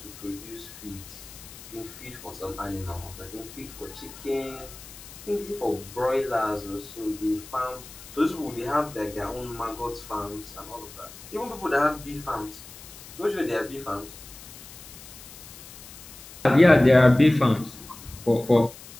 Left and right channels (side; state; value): left; noise; hiss, 16 dB below the sound